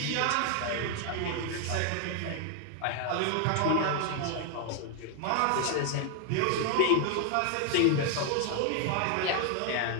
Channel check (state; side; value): different; both; correlation 0.01